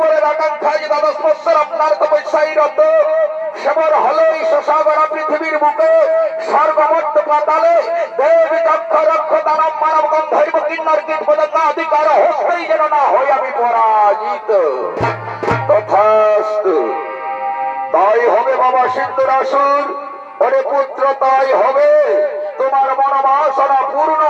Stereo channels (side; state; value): both; identical; correlation 1.00